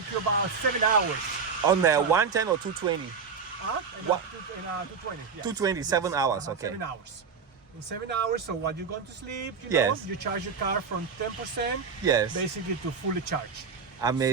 you about 7 hours. On the 110 or 220? What? 220. Yes. 220, 7 hours, okay. 7 hours. In 7 hours, so while you're going to sleep, Yes. you charge your car from 10% Yes. basically to fully charge.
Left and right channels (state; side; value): quieter; left; 5.7 dB